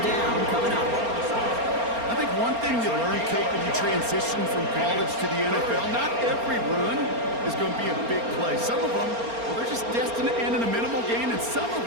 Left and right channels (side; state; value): left; late; 4.3 ms